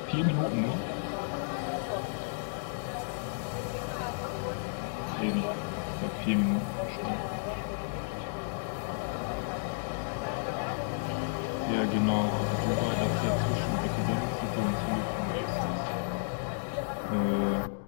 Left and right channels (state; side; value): silent; right; digital silence